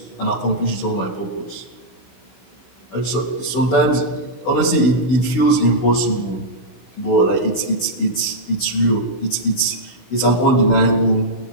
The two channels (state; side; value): late; right; 16 ms